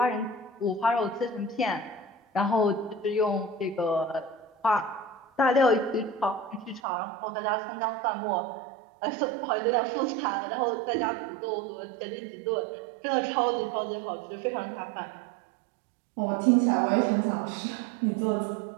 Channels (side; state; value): left; drops out; at 6.8 s